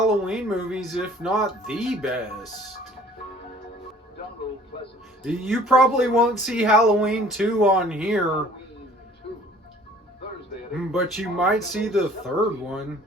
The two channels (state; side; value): normal; both; correlation 0.52